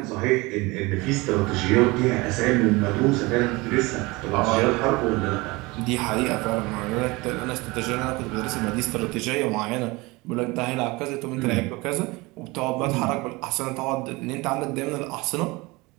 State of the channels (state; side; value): quieter; left; 23.5 dB